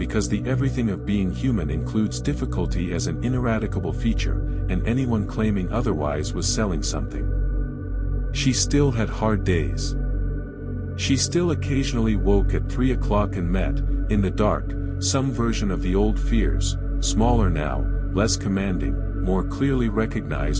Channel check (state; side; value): identical; both; correlation 1.00